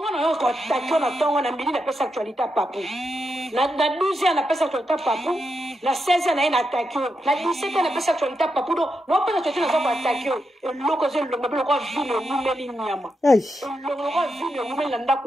na yo ko takyo na tongo na mbili na pesa actualité papu. Na 12 ans na pesa actualité papu. Na 16 ans na ina takyo. Na 17 ans na pesa actualité papu do. No pesa actualité na zo ko takyo. Eloko zo longa bilo ko vino mumeli nyama. Eloko ko vino mumeli nda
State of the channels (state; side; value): normal; both; correlation 0.85